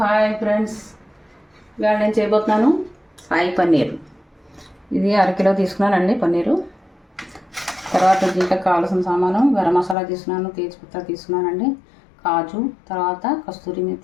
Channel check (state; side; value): drops out; right; at 10.0 s